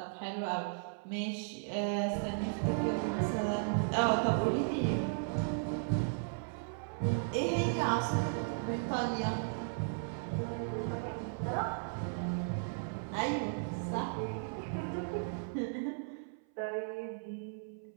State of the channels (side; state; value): left; silent; 54 dB below the other